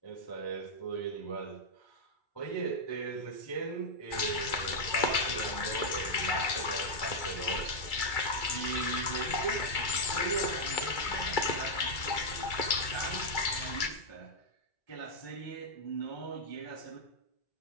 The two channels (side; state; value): right; late; 2.3 ms